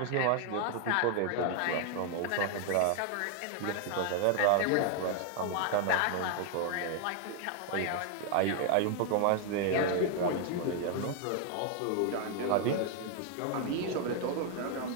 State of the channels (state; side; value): different; both; correlation 0.00